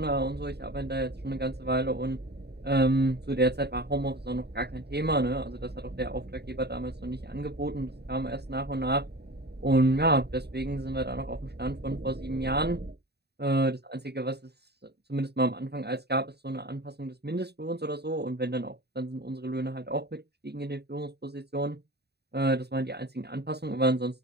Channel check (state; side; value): late; left; 0.48 ms